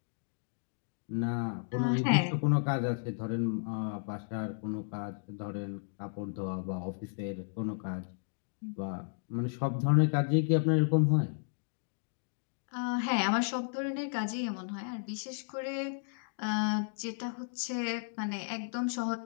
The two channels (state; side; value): silent; right; digital silence